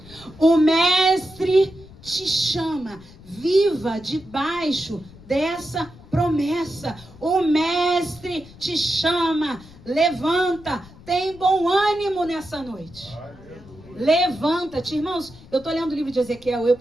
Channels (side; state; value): left; noise; rumble, 21 dB below the sound